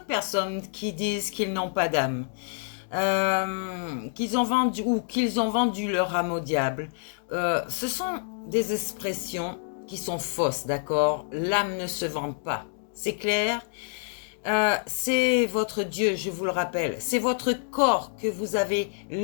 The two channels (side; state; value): right; silent; digital silence